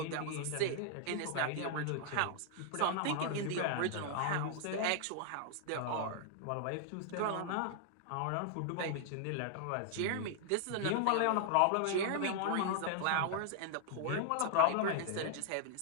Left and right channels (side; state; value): both; different; correlation -0.01